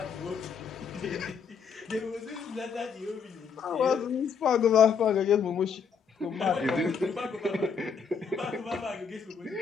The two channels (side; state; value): right; quieter; 6.2 dB